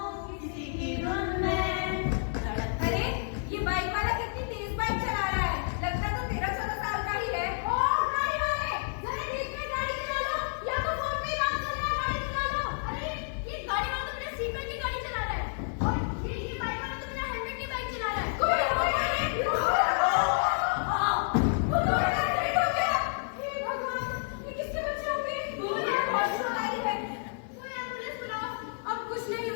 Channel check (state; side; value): silent; right; digital silence